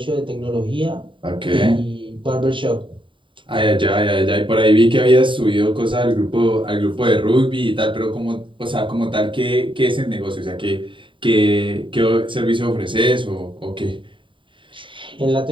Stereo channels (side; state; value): left; late; 0.24 ms